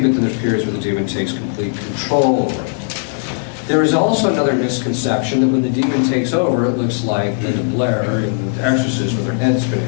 but then there's periods where the demon takes complete control over it. There is also another misconception that when the demon takes over, it looks like Linda Blair in The Exorcist with her head spinning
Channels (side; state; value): right; silent; digital silence